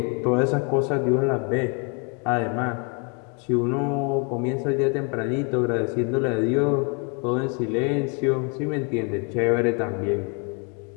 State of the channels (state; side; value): quieter; right; 34.5 dB